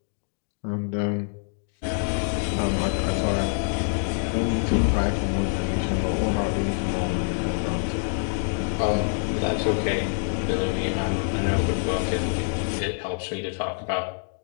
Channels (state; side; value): silent; right; digital silence